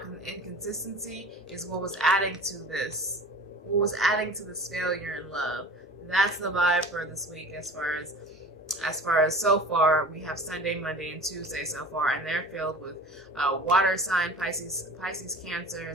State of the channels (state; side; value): normal; both; correlation 0.40